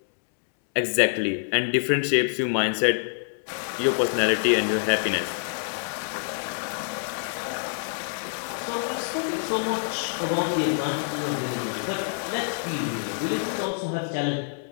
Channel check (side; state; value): right; silent; digital silence